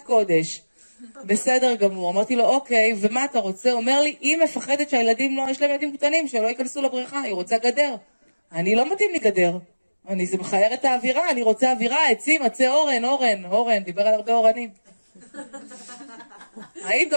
קודש, בסדר גמור, אמרתי לו אוקיי, ומה אתה רוצה? אומר לי, היא מפחדת שהילדים לא, יש להם ילדים קטנים, שלא ייכנסו לבריכה, היא רוצה גדר, אני לא מתאים לי גדר, זה מחייר את האווירה, אני רוצה אווירה, עצים, עצי אורן, דיבר על הרבה אורנים. אני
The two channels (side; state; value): both; inverted; correlation -1.00